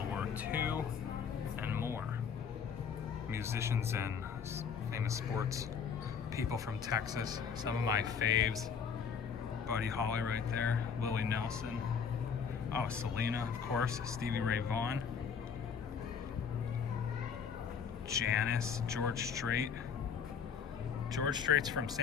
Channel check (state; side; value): quieter; right; 6.7 dB